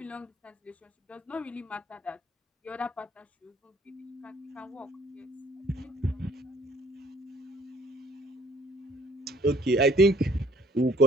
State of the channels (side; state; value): both; normal; correlation 0.57